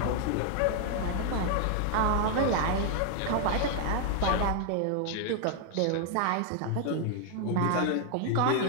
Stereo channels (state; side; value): different; both; correlation 0.00